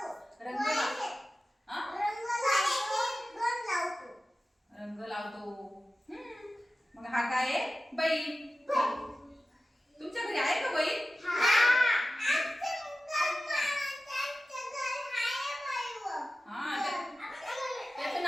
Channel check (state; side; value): normal; both; correlation 0.95